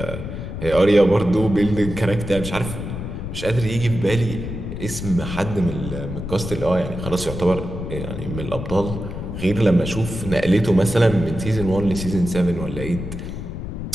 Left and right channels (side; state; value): left; noise; rumble, 7 dB below the sound